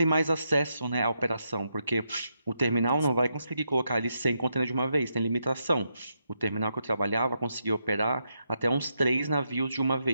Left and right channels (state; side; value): inverted; both; correlation -0.82